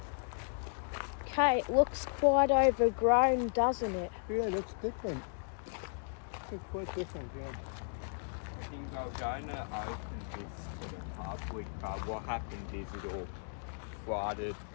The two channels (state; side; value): silent; right; digital silence